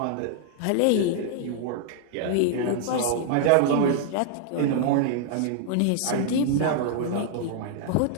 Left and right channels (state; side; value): different; both; correlation 0.00